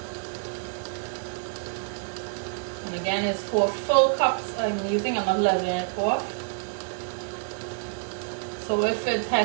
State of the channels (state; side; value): silent; left; digital silence